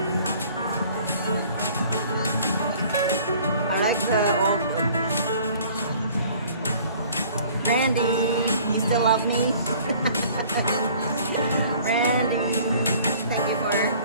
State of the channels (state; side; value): inverted; both; correlation -0.52